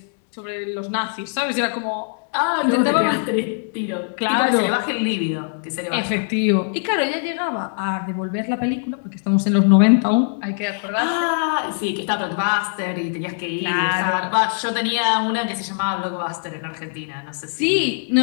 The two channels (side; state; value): right; silent; digital silence